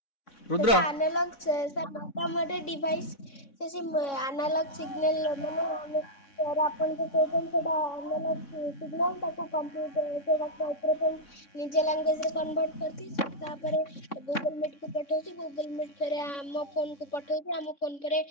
रुद्र एनालॉग सर मोटा डिवाइस से एनालॉग सिग्नल माने सर अपन को पेटेंट सेटा एनालॉग सिग्नल ताको कंप्यूटर से माइक्रोफोन निजे लैंग्वेज रे कन्वर्ट करती तापर गूगल मीट को पठाउची गूगल मीट फेरे हम फोन को पठाउची हम फोन पर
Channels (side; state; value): right; late; 3.6 ms